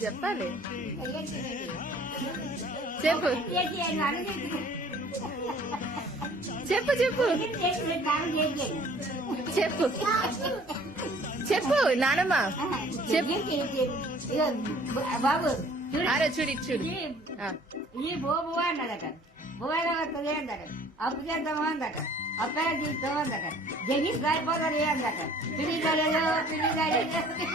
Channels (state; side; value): normal; both; correlation 0.53